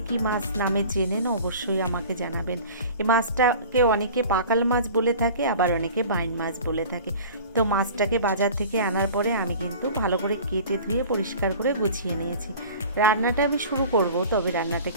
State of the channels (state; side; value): inverted; both; correlation -0.41